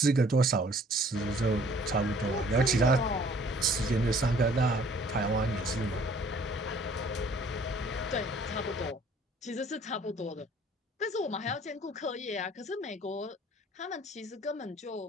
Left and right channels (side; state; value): both; normal; correlation 0.56